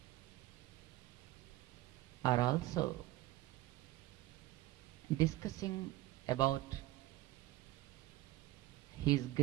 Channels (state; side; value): quieter; left; 17.0 dB